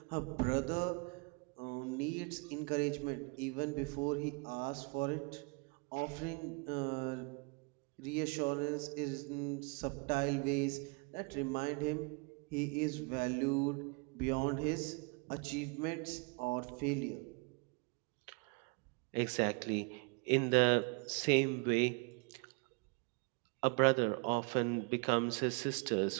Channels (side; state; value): left; quieter; 32.0 dB